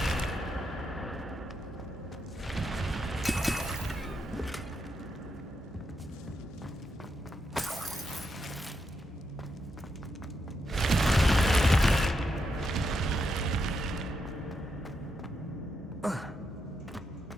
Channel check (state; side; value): normal; both; correlation 0.82